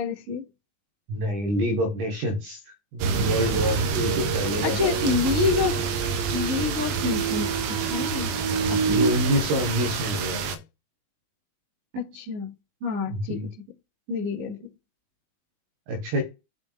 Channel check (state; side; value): late; left; 20 ms